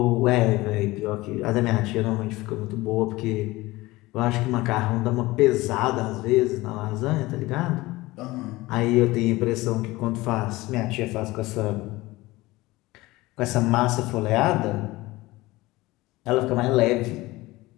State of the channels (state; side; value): quieter; right; 19.8 dB